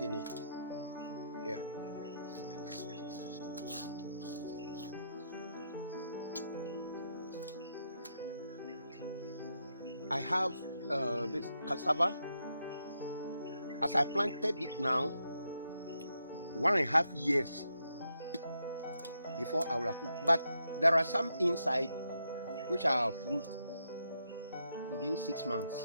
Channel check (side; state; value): both; inverted; correlation -0.81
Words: it. Yeah. I have this cassava. As I planted it now, 1.5 years before I will fruit. But there are some inside which are fruit within 6 months.